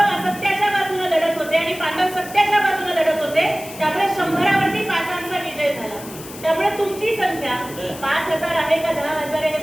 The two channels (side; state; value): left; noise; hiss, 15 dB below the sound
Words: असत्याच्या बाजूने लढत होते आणि पांडव सत्याच्या बाजूने लढत होते. त्यामुळे 100वरती 5चा विजय झाला. त्यामुळे तुमची संख्या 5000 आहे का 10000 आहे